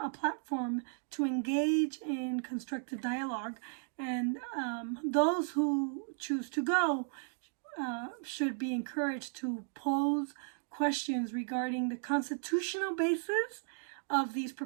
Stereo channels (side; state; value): left; silent; digital silence